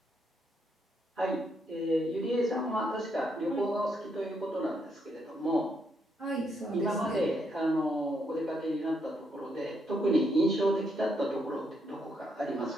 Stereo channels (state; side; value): normal; both; correlation 0.76